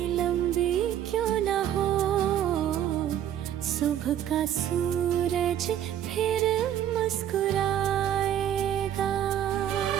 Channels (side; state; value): left; quieter; 10.5 dB